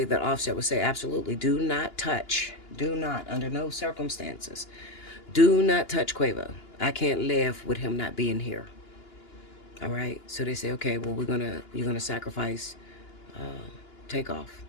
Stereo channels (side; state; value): right; late; 2.9 ms